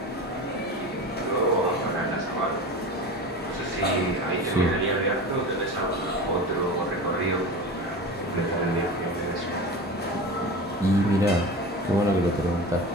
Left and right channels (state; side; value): normal; both; correlation 0.30